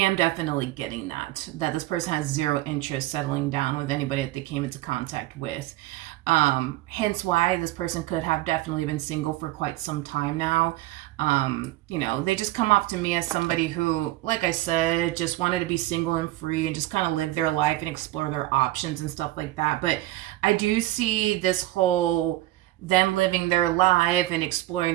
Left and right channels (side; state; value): left; quieter; 17.0 dB